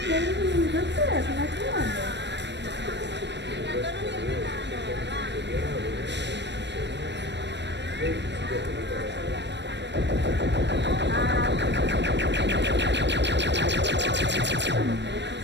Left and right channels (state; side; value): late; left; 0.51 ms